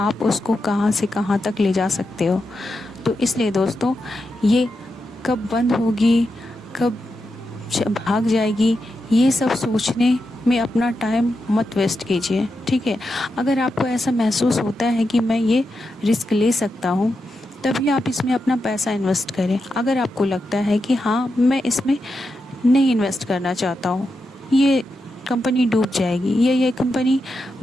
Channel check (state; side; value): normal; both; correlation 0.87